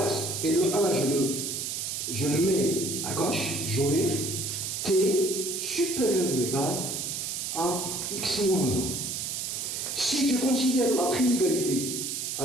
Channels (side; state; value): right; noise; hiss, 3 dB below the sound